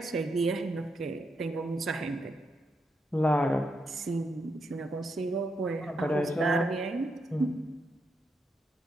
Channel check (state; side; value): normal; both; correlation 0.82